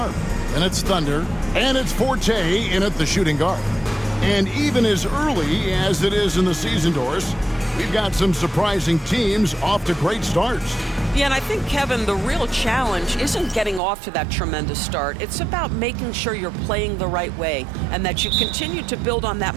and it's Thunder, and it's Forte in at the shooting guard. And even as early as it is in the season, Doris, we've got some surprising teams off to great starts. Yeah, and I think, Kevin, the real challenge isn't getting off to that tremendous start. It's about making sure you're playing the right way and that you continue to build on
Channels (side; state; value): left; drops out; at 13.8 s